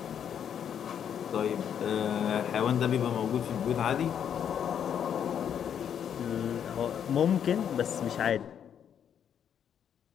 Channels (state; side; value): quieter; right; 8.7 dB